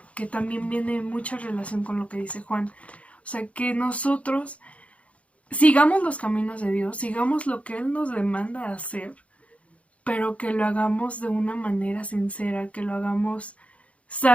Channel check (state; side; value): late; right; 0.064 ms